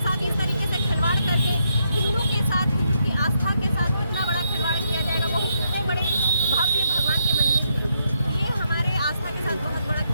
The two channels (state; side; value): inverted; both; correlation -0.78